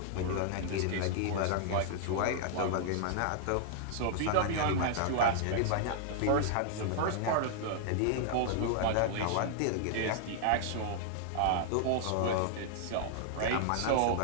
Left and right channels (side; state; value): both; different; correlation -0.01